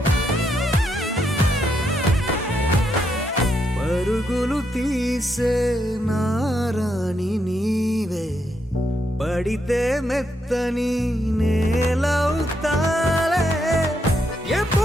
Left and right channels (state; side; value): normal; both; correlation 0.79